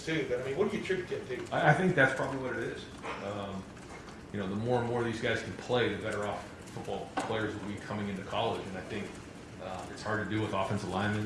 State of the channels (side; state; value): both; identical; correlation 1.00